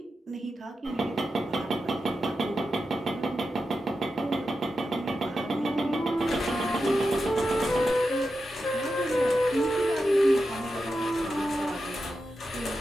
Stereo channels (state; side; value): normal; both; correlation 0.90